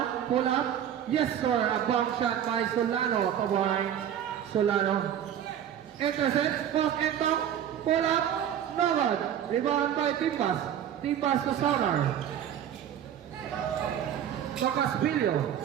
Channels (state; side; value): quieter; left; 9.9 dB